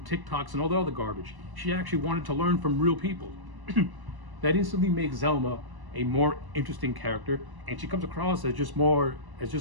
TikToks and all the other garbage. She actually wanted to learn from real people. That instantly makes Zelma a more interesting character, and she comes across as just more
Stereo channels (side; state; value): left; late; 1.1 ms